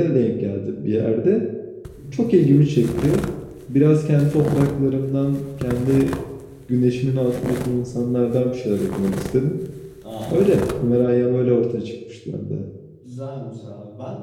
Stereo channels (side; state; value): both; identical; correlation 1.00